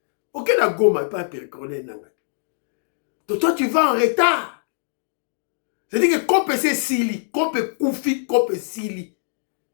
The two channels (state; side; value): silent; right; digital silence